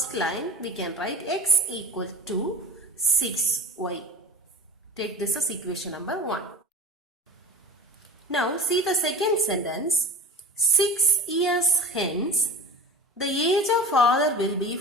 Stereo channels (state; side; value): normal; both; correlation 0.35